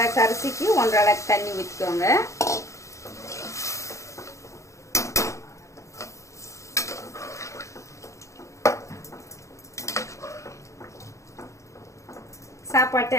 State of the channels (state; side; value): late; right; 0.15 ms